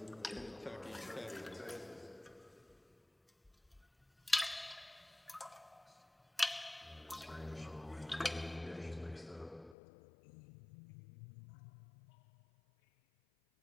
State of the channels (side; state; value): right; drops out; at 9.8 s